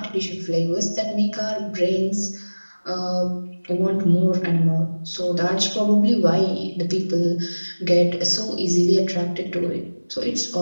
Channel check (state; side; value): inverted; both; correlation -1.00